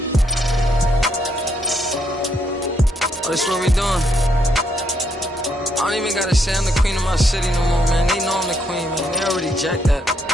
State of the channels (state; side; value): normal; both; correlation 0.75